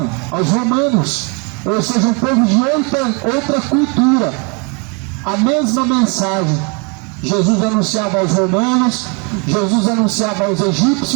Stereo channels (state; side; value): quieter; left; 33.2 dB